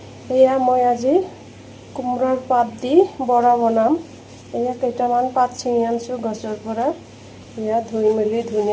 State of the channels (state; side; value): identical; both; correlation 1.00